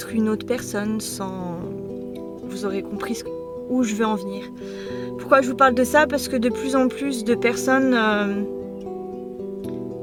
une autre personne, sans... Vous aurez compris où je veux en venir. Pourquoi je vous parle de ça? Parce que de plus en plus de personnes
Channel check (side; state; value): both; identical; correlation 1.00